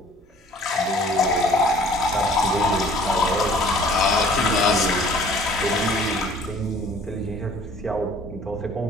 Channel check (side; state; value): both; normal; correlation 0.53